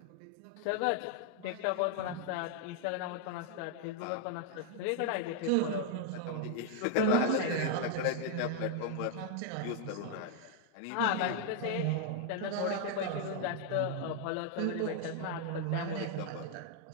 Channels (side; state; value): both; different; correlation 0.00